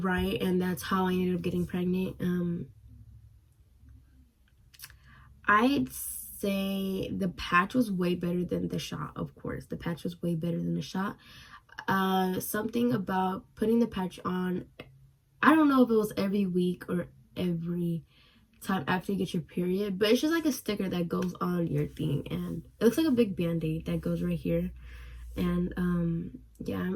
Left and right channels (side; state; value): both; identical; correlation 1.00